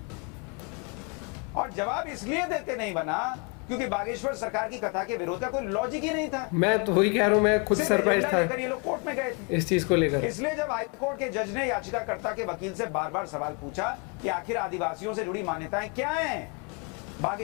और जवाब इसलिए देते नहीं बना क्योंकि बागेश्वर सरकार की कथा के विरोध का कोई लॉजिक ही नहीं था। मैं तो वही कह रहा हूँ, मैं खुद सरप्राइज था ये लोग कोर्ट में गए थे इस चीज को लेकर। इसलिए जब हाईकोर्ट के जज ने याचिकाकर्ता के वकील से बार बार सवाल पूछा कि आखिर आदिवासियों से जुड़ी मान्यताएं क्या हैं,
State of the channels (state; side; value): quieter; right; 34.3 dB